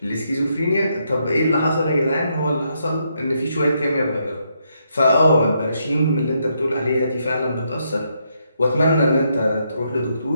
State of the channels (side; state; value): both; inverted; correlation -0.77